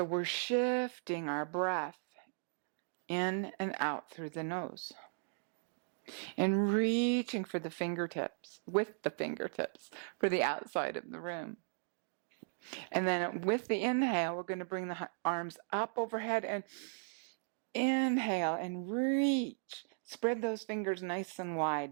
we're shifting our breath in and out through the nose. And reaching for the fingertips, with the fingertips, for the outside of the room. And then with the inhale, we're going to bring the arms up overhead and inhale and reach. Spread those fingers nice and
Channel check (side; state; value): left; silent; digital silence